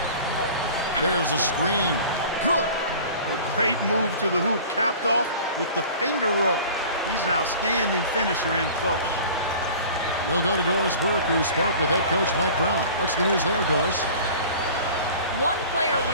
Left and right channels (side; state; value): both; inverted; correlation -0.43